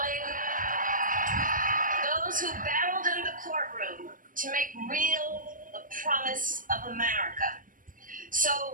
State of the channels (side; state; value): left; late; 0.39 ms